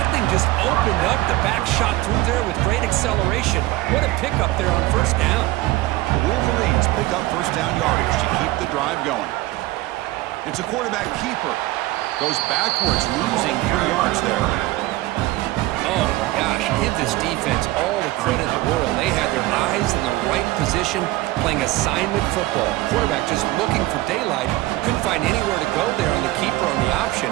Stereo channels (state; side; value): quieter; left; 18.3 dB